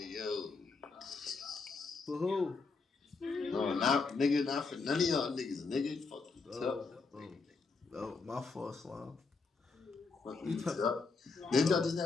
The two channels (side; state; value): right; quieter; 4.4 dB